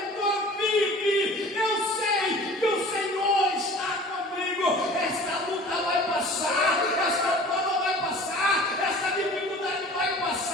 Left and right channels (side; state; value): both; normal; correlation 0.44